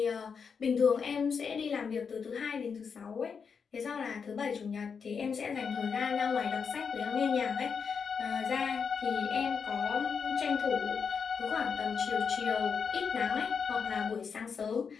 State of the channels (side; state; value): right; quieter; 6.1 dB